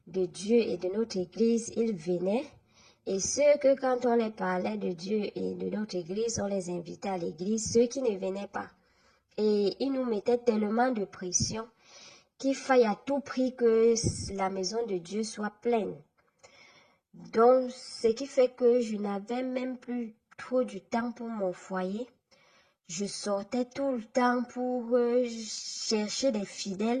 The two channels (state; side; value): identical; both; correlation 1.00